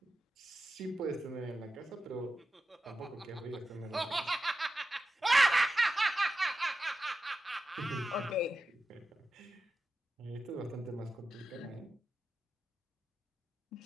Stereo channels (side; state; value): both; normal; correlation 0.92